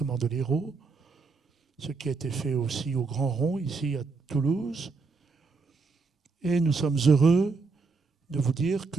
de l'Hérault, ce qui a été fait aussi au Grand Rond, ici à Toulouse. Et nous sommes heureux de vous dire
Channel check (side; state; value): left; quieter; 4.2 dB